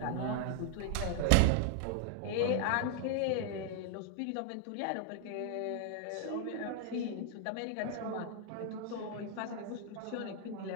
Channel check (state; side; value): different; both; correlation 0.00